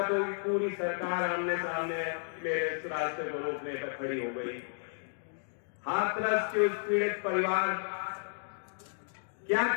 तो पूरी सरकार आमने सामने मेरे इस रास्ते को रोकने पर खड़ी हो गई। हाथरस के उस पीड़ित परिवार, क्या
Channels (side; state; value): right; silent; digital silence